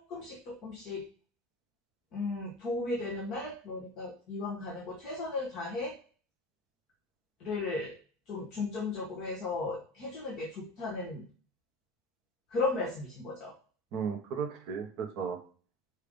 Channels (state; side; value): normal; both; correlation 0.33